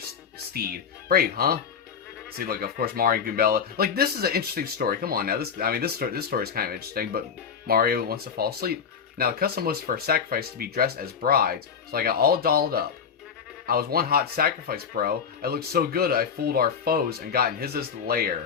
Brave, huh? See, like, of course, Mario and Goombella. Like, this is an interesting story. Come on now, this story is kind of interesting. But Mario wants to fall asleep. Now, the custom was for a sacrifice to be dressed as brides, so I got all dolled up. I was one hot sacrifice, bro. I looked so good I fooled our foes and got in Hizza's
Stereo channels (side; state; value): right; quieter; 6.7 dB